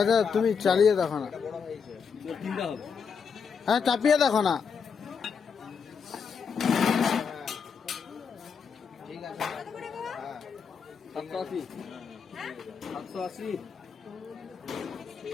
তুমি চালিয়ে দেখো না। এটা বড় হয়েছে। হ্যাঁ চাপিয়ে দেখো না। ঠিক আছে। হ্যাঁ 780 780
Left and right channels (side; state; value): right; quieter; 6.1 dB